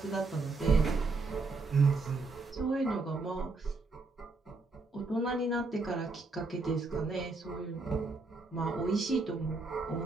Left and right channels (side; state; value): left; quieter; 3.7 dB